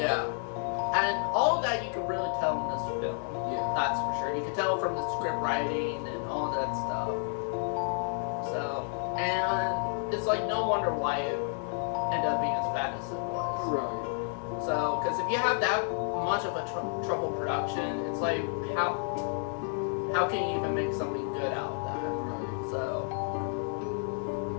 and all of that you could really tell in this film. Yeah. That's for sure. You could tell from the script writing and all that stuff. So, and it's like no wonder why it ended up being as bad as it was. Right. So, because if you have that much of a troubled production, it's like how can you even make something good out of that? Right. So,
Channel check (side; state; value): right; silent; 57 dB below the other